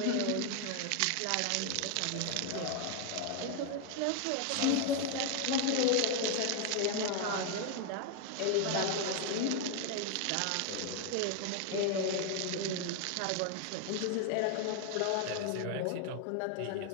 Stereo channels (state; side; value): different; both; correlation 0.01